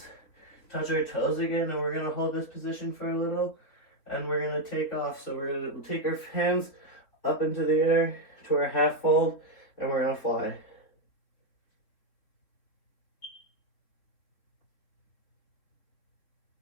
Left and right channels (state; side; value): late; right; 3.7 ms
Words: touch our toes again, and we're gonna hold this position for a little, and we're gonna take off. So we're gonna take our hands up into the air to our half fold, and we're gonna fly.